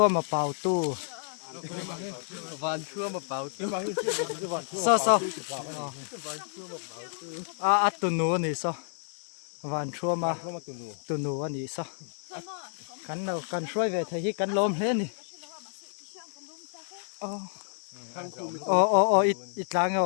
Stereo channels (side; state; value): right; silent; digital silence